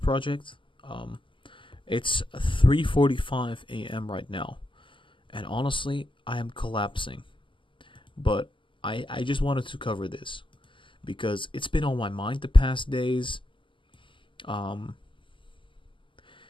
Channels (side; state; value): right; late; 0.25 ms